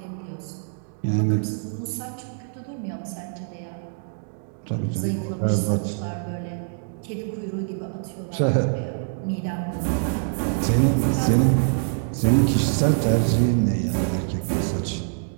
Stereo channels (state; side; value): silent; left; digital silence